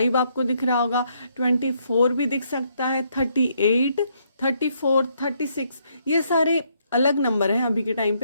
आपको दिख रहा होगा, 24 भी दिख सकता है, 38, 34, 36 ये सारे अलग नंबर हैं अभी के टाइम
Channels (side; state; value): both; inverted; correlation -0.73